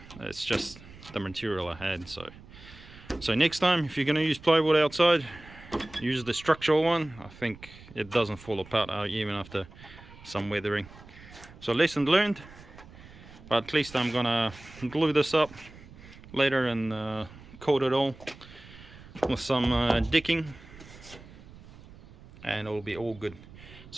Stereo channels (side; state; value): right; noise; rumble, 19 dB below the sound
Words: It's just the material I had. So next time, if you're going to use plywood outside, use the structural one. I think it doesn't fall apart even after some weathering. So lesson learned, but at least I'm gonna glue this up later and coat it all with some decking, and it'll be all good.